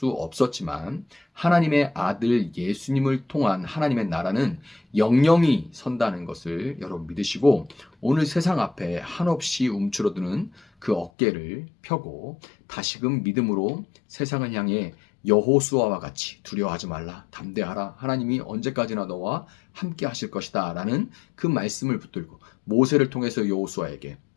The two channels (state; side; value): drops out; right; at 11.1 s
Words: 없었지만 하나님의 아들 예수님을 통한 하나님의 나라는 영영이 선다는 것을 여러분 믿으시고 오늘 세상 앞에 한없이 움츠러드는 그 어깨를 펴고 다시금 믿음으로 세상을 향해 여호수아와 같이 두려워하지 말라, 담대하라, 하나님이 언제까지나 너와 함께 하실 것이다 라는 그 말씀을 붙들고 모세를 통해서 여호수아에게,